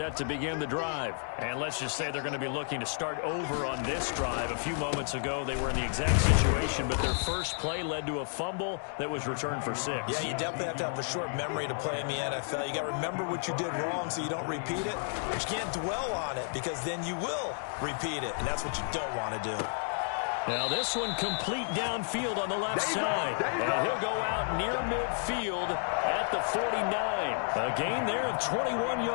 to begin the drive. And let's just say they're going to be looking to start over on this drive. A few moments ago, they were in the exact situation, but their first play led to a fumble that was returned for 6. Yeah, you definitely have to have a short memory to play in the NFL. You got to remember what you did wrong so you don't repeat it. But you can't dwell on it because then you will repeat it, and that's what you don't want to do. Now this one complete downfield on the left side. And he'll go out near midfield at the 49. A gain there of 21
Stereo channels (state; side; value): silent; right; digital silence